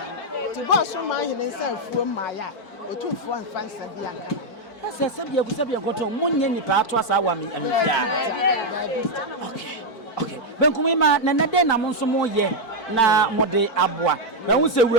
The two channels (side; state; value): right; late; 4.5 ms